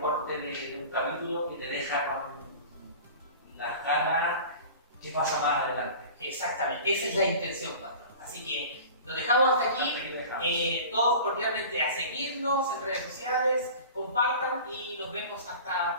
corte de un capítulo que te deja con las ganas. ¿Qué pasa más adelante? Exactamente, esa es la intención, pastor. Así que lo dejamos hasta aquí. Todos cordialmente a seguirnos en redes sociales, compartan y nos vemos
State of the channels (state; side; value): inverted; both; correlation -0.39